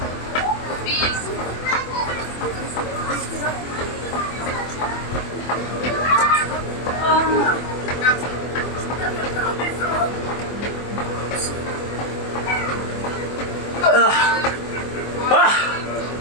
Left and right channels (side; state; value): right; late; 24 ms